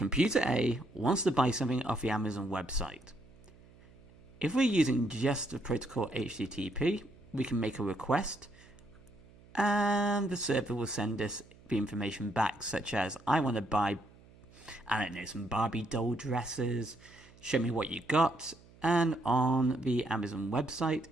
A wants to buy something off the Amazon website. If we're using just the protocol HTTP, we can make a request and the server will send us the information back, such as, I want to buy, I don't know, some Barbie doll dresses, show me what you got, and on the Amazon website,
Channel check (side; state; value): right; noise; hum, 25 dB below the sound